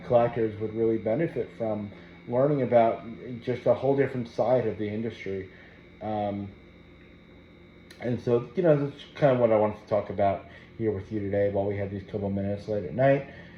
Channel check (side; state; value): both; identical; correlation 1.00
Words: collectors would really benefit from learning about just a whole different side of the industry. Um, and so, that's kind of what I wanted to talk about here with you today while we have these couple minutes late at night.